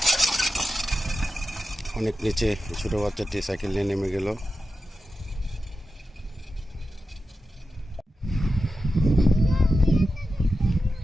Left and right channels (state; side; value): normal; both; correlation 0.91